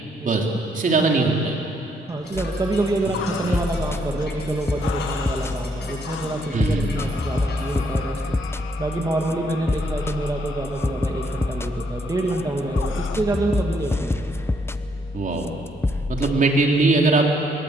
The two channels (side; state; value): both; normal; correlation 0.71